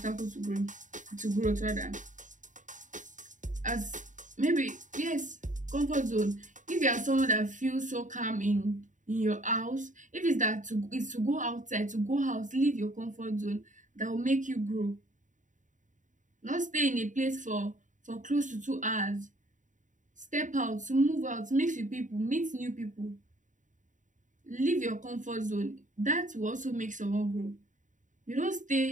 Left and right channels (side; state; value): left; late; 0.37 ms